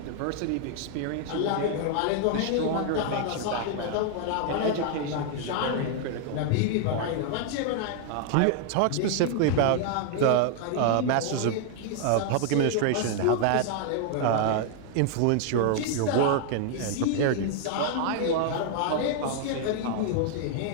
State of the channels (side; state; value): both; different; correlation 0.00